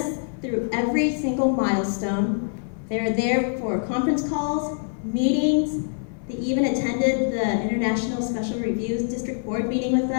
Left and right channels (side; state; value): right; silent; digital silence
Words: through every single milestone. They're there for conference calls, meetings. They even attended the International Special Reviews District Board meeting with